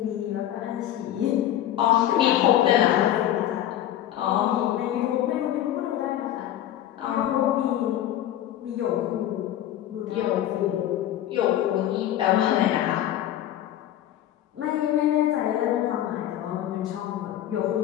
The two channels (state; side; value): quieter; right; 12.2 dB